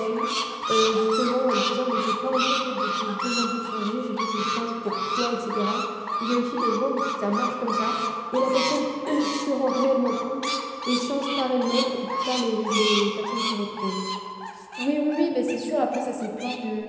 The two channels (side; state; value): both; identical; correlation 1.00